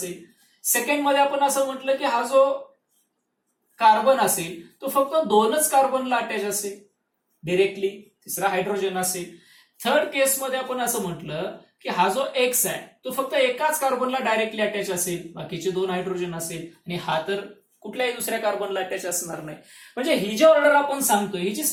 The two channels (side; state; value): both; identical; correlation 1.00